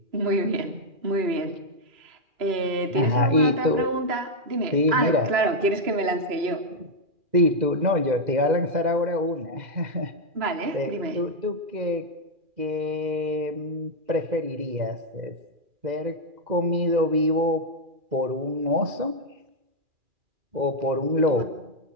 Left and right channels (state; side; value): late; left; 2.4 ms